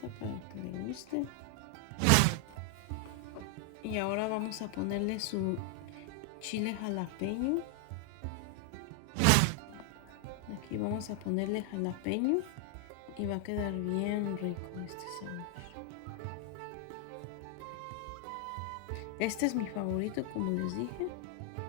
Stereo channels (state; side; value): different; both; correlation 0.00